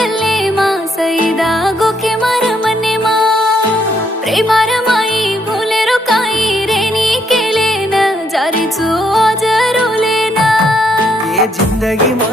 मा सईदा गोखे मार मने मा प्रेमार माई भूले रो काई रेनी केले न जारी चो आज रोले ना ये जिंदगी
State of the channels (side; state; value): both; normal; correlation 0.73